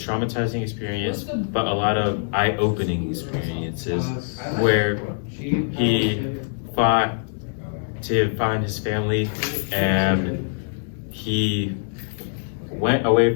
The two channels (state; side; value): silent; right; 63 dB below the other